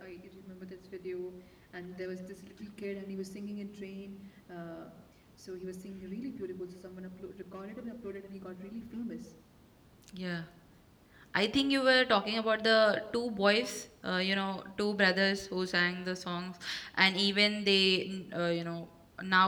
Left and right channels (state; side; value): identical; both; correlation 1.00